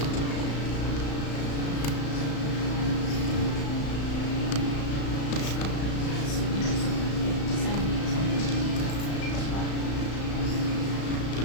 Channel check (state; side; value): late; right; 35 ms